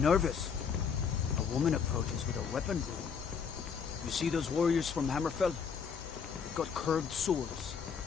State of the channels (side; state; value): right; quieter; 6.4 dB